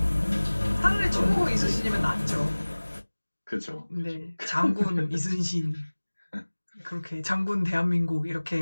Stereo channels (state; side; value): inverted; both; correlation -1.00